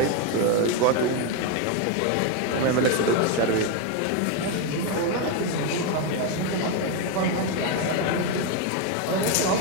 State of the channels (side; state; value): both; different; correlation 0.02